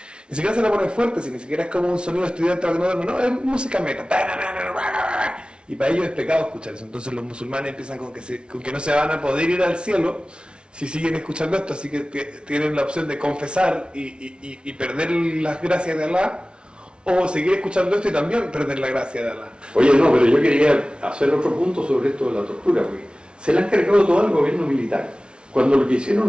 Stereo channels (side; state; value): left; late; 0.057 ms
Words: Ni siquiera se la ponen fuerte, si ni siquiera es como un sonido estudiante, no, es música metal. Y para ellos es pecado escuchar eso. Entonces los musulmanes empiezan con que no se van a poder ir al cielo si siguen escuchando esto, así que tienen la opción de confesar y perder las gracias de Allah, o seguir escuchando esto y también perder la gracia de Allah. Oye, no, pero yo quería hacer otro punto sobre esto de la tortura, porque se le han cargado todo al gobierno militar. Cuando lo que hicieron